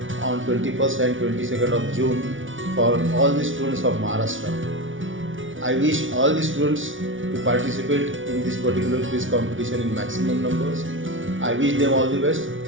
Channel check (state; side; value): late; left; 0.57 ms